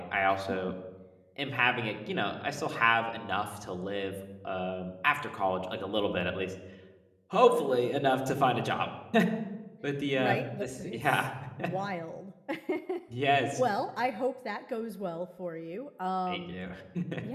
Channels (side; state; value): both; identical; correlation 1.00